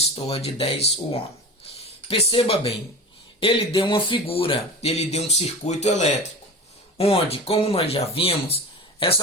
de 10 ohm? Perceba bem, ele deu uma figura, ele deu um circuito elétrico, onde, como nós já vimos,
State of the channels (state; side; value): normal; both; correlation 0.31